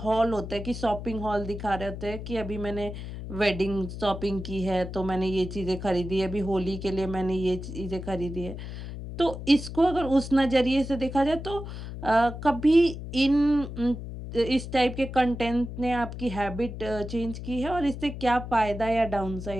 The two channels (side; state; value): left; noise; hum, 9 dB below the sound